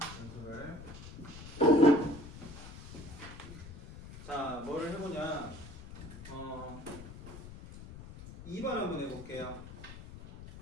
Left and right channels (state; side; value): noise; left; rumble, 13 dB below the sound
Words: 연습을. 자, 뭐를 해보냐. 2번 한번 해볼게요.